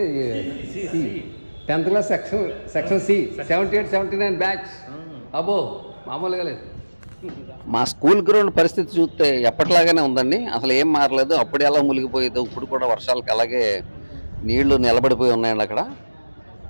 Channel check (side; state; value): both; inverted; correlation -1.00